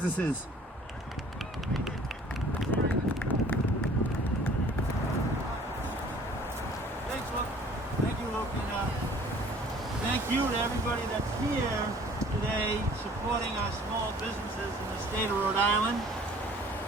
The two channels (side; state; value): both; normal; correlation 0.52